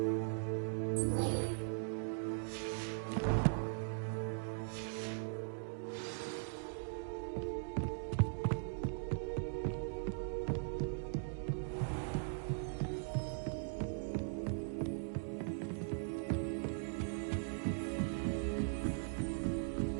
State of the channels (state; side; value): silent; left; digital silence